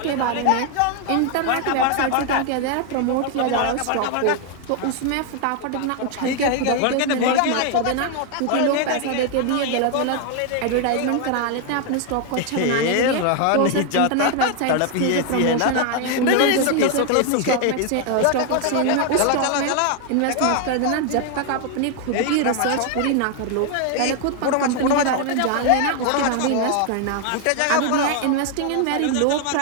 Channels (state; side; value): different; both; correlation 0.00